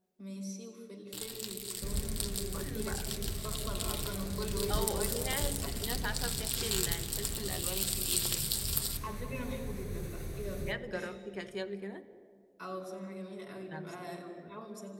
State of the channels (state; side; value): identical; both; correlation 1.00